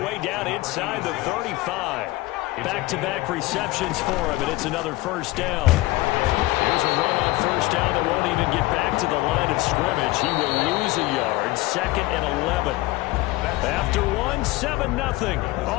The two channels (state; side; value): quieter; right; 19.6 dB